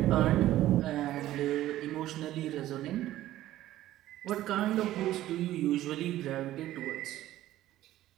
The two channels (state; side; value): quieter; left; 14.3 dB